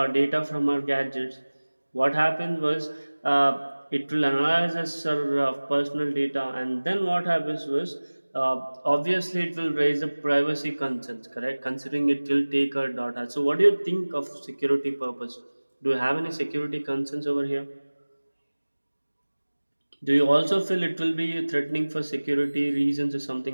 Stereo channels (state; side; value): inverted; both; correlation -1.00